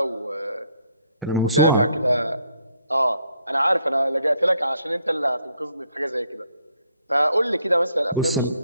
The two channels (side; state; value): both; inverted; correlation -0.70